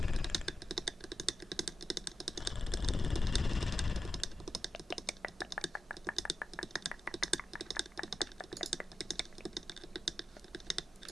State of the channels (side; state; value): both; normal; correlation 0.89